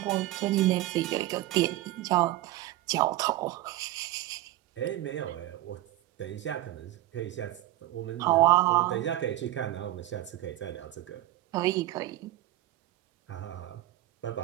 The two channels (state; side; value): quieter; left; 15.6 dB